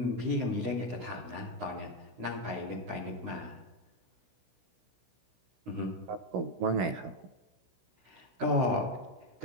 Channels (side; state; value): left; late; 16 ms